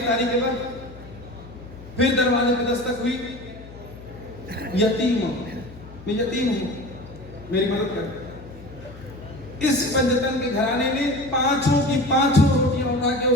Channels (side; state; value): left; noise; hum, 18 dB below the sound